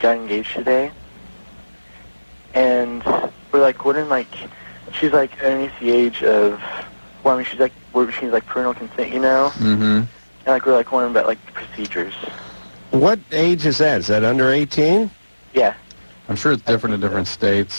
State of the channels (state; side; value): inverted; both; correlation -1.00